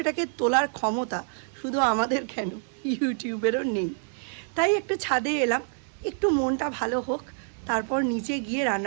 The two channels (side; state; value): left; silent; digital silence